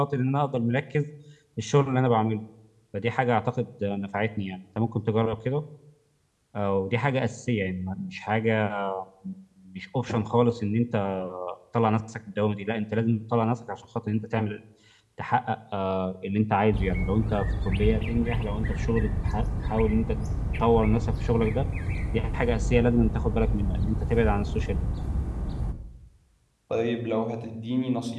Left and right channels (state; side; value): identical; both; correlation 1.00